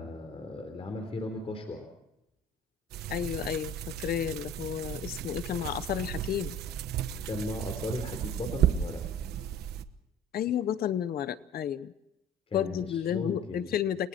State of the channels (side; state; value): both; normal; correlation 0.43